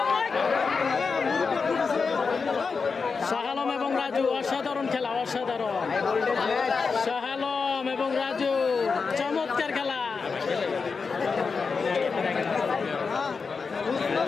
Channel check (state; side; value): quieter; right; 5.0 dB